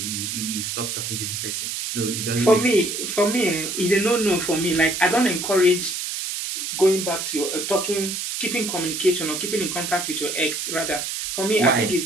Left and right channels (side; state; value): right; noise; hiss, 4 dB below the sound